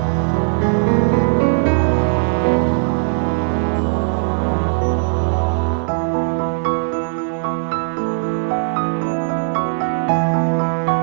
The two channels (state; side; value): silent; left; digital silence